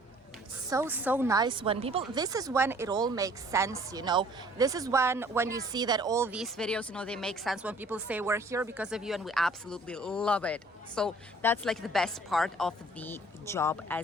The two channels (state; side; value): normal; both; correlation 0.55